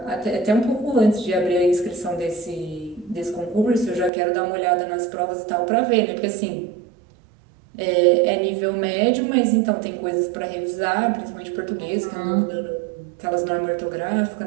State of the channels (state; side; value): drops out; left; at 4.1 s